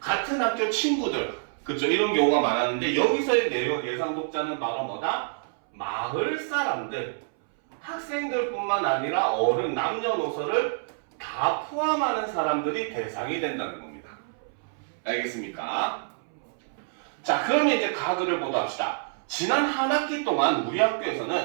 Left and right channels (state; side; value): silent; left; 60 dB below the other